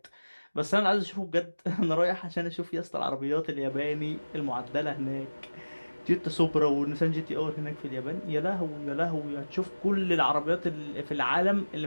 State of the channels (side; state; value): both; inverted; correlation -1.00